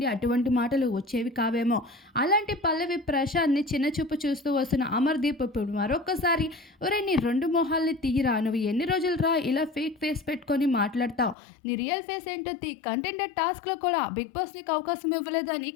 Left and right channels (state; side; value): drops out; right; at 11.4 s